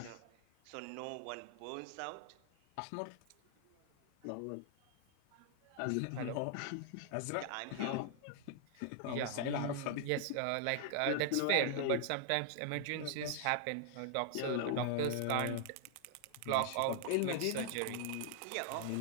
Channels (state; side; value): different; both; correlation 0.00